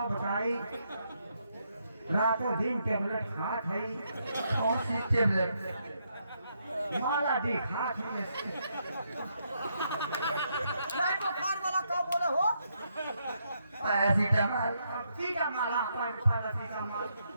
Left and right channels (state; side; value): inverted; both; correlation -0.77